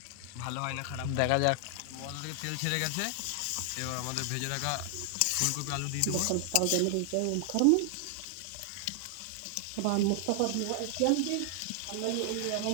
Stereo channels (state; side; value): different; both; correlation 0.00